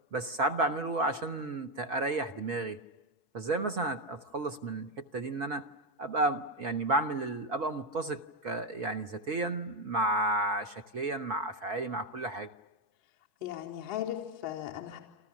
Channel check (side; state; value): left; late; 5.0 ms